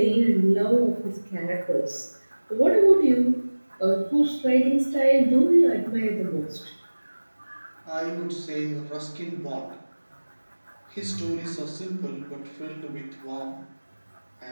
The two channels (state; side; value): inverted; both; correlation -1.00